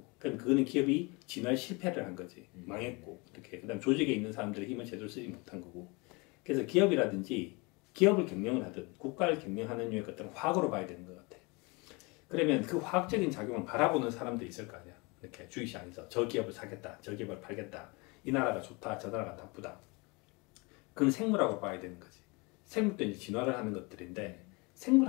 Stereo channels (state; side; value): quieter; right; 27.6 dB